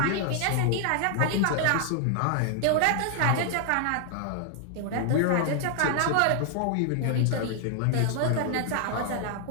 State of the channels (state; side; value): different; both; correlation 0.00